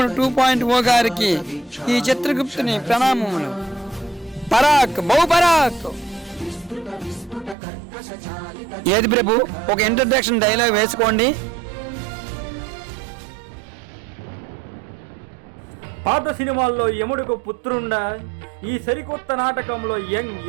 2.0 గారికి ఈ చిత్రగుప్తుని ప్రణామములు. పరాక్ బహు పరాక్. ఏది ప్రభు, ఒక ఇంట్రడక్షన్ డైలాగ్ వేసుకోండి. పాత సినిమాల్లో యముడుకు పుత్రుండా, ఈ సరికొత్త నాటకంలో యంగ్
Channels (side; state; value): left; drops out; at 7.6 s